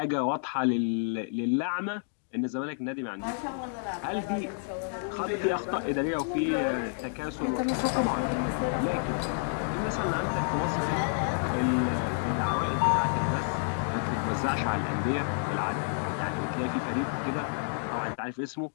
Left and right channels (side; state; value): right; silent; digital silence